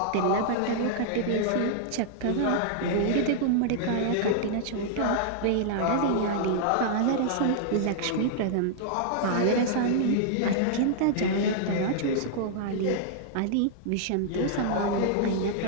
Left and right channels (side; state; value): both; different; correlation -0.01